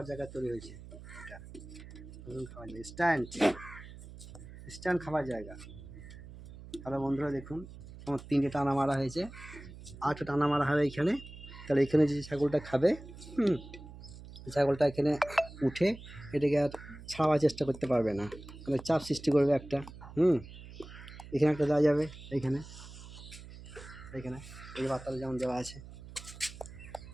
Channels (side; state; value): right; noise; hum, 15 dB below the sound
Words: জায়গা তৈরি হয়েছে, এটা নতুন খাবার জায়গা, স্ট্যান্ড খাবার জায়গা। হ্যালো বন্ধুরা, দেখুন আমার 3টে টানা মারা হয়েছে, 8টা টানা মারা হবে এইখানে। তাহলে এখানে যে ছাগলটা খাবে, ছাগলটা এখানে উঠে এটাকে আর ছাড়াবার চেষ্টা করতে পারবে না, মানে চাপ সৃষ্টি করবে একটা। এখানে একটা দেওয়া যাবে, এইখানে এইখানে এই বাচ্চাটা যেমন দেওয়া আছে,